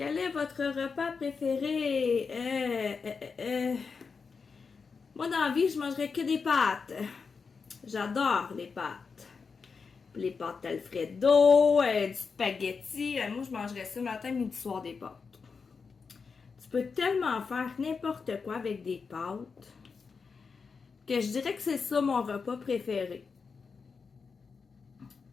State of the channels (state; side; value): quieter; right; 5.2 dB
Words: est votre repas préféré? Moi, dans la vie, je mangerais que des pâtes. J'adore les pâtes. Les pâtes Alfredo, du spaghetti. Moi, je mangerais ça matin, midi, soir des pâtes. Tu peux tellement faire n'importe quoi avec des pâtes que je dirais que c'est ça mon repas préféré.